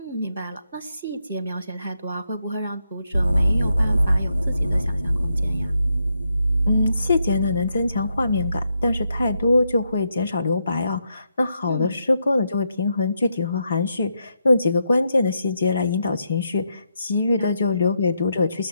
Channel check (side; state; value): both; inverted; correlation -0.81